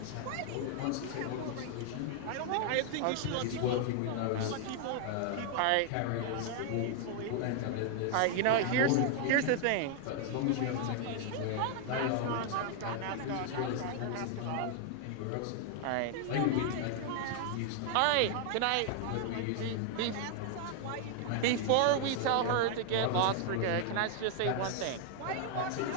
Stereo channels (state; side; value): different; both; correlation 0.00